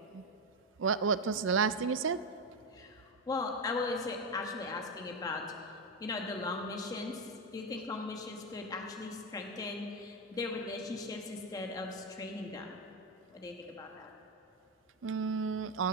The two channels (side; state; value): both; normal; correlation 0.09